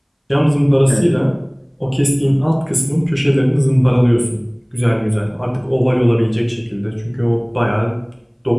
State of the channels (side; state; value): both; identical; correlation 1.00